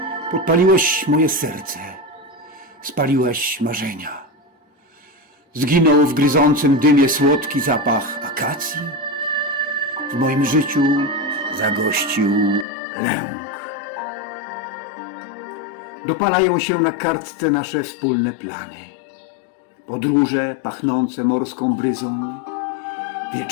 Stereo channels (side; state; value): right; drops out; at 12.7 s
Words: Podpaliłeś moje serce, spaliłeś marzenia. Zginął w gryzącym dymie słodki zapach akacji. W moim życiu zagościł lęk. Dopalają się na kartce nasze wspólne plany. Podróże pachnące morską bryzą,